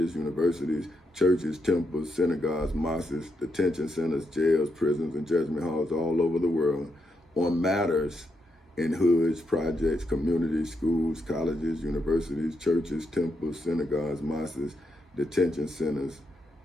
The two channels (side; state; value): both; normal; correlation 0.82